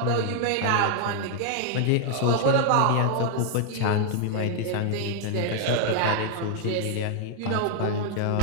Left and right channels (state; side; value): different; both; correlation -0.01